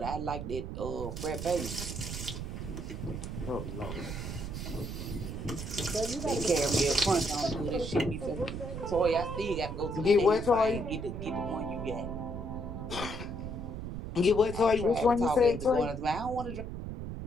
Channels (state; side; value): noise; right; rumble, 6 dB below the sound